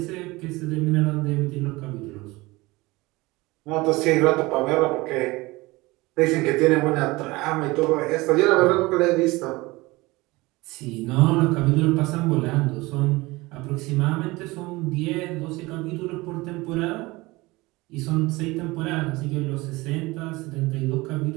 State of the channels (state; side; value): quieter; left; 21.8 dB